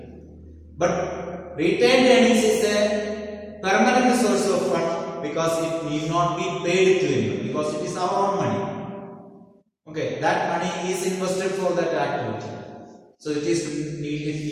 But retained earnings is a permanent source of fund because it need not be paid to anyone, because it is our own money. Okay, that money is invested for that activity. So it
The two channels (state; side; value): identical; both; correlation 1.00